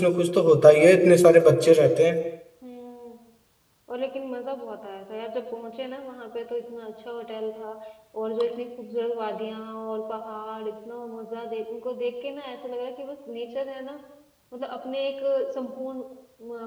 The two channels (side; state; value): both; identical; correlation 1.00